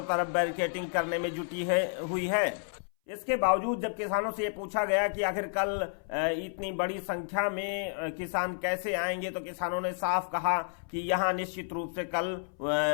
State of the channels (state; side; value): silent; right; 57 dB below the other